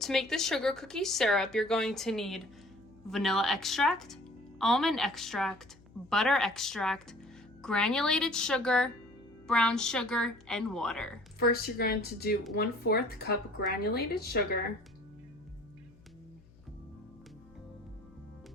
make the sugar cookie syrup, you're going to need vanilla extract, almond extract, butter extract, granulated sugar, brown sugar, and water. First, you're going to do 1/4 cup granulated sugar,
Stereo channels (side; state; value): left; noise; hum, 26 dB below the sound